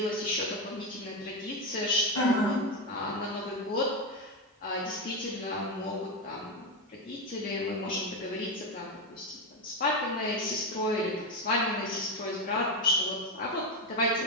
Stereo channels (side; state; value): both; normal; correlation 0.12